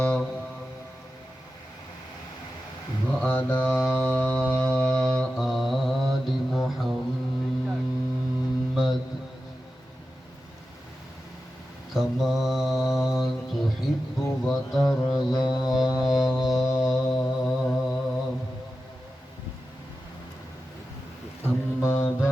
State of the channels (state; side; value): normal; both; correlation 0.92